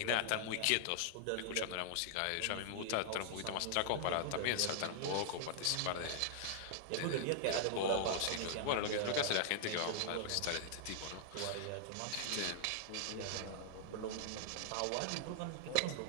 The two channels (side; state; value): both; different; correlation 0.00